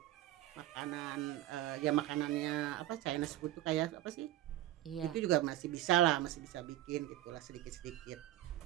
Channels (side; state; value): left; quieter; 14.6 dB